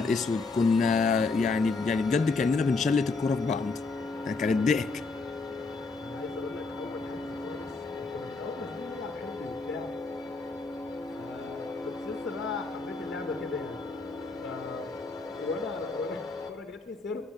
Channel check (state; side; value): quieter; right; 3.9 dB